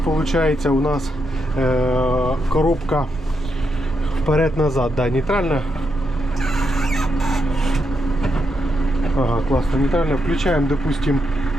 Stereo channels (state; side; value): normal; both; correlation 0.82